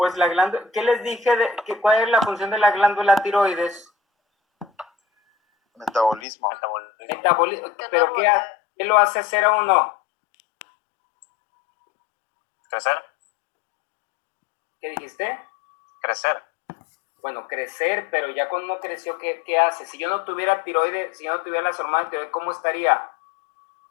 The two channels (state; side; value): drops out; right; at 6.2 s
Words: la glándula, ¿qué les dije? ¿Cuál es la función de la glándula tiroides? Metabolismo. ¿Pero qué lo hace hacer a uno? ¿Crecer? ¿Qué dijiste? Crecer. Bueno, crecer, pero ya cuando uno creció, ¿qué hace? Si yo no tuviera tiroides, si yo no tuviera las hormonas de tiroides, ¿cómo estaría? O